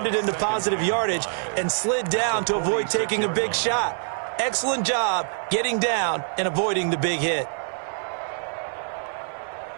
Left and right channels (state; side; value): silent; left; 62 dB below the other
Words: it into positive yardage and slid down to avoid taking a big shot. Excellent job getting down and avoiding the big hit.